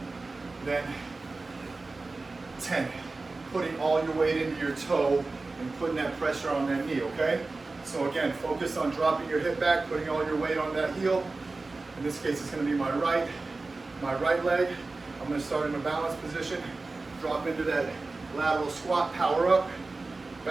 then 10. Putting all your weight into your toe and putting that pressure on that knee, okay? So again, focus on dropping your hip back, putting all your weight on that heel. In this case, it's gonna be my right leg. I'm gonna start in a balanced position, drop into that lateral squat, power up,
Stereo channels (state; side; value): quieter; left; 3.5 dB